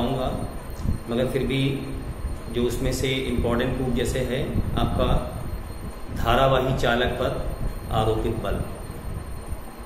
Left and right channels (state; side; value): identical; both; correlation 1.00